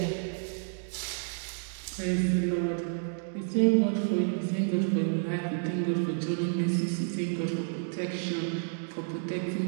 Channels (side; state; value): left; silent; digital silence